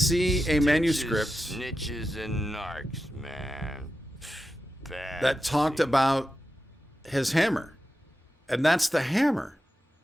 a manuscript Snitches and narcs, man. Bad that talked about his hammer? And that's the hammer.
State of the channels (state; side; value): normal; both; correlation 0.90